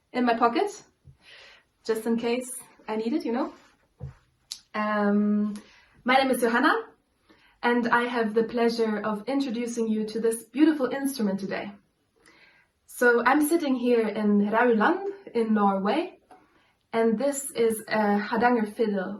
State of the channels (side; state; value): both; identical; correlation 1.00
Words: in my pocket, just in case I need it, you know. My name is Johanna, and I have the pleasure of introducing you to this beautiful instrument today. So I'm sitting here in Hardanger in Norway, and this is a Hardanger fiddle,